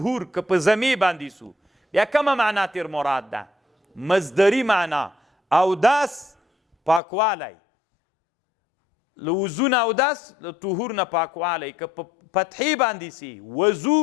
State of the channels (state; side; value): drops out; right; at 7.0 s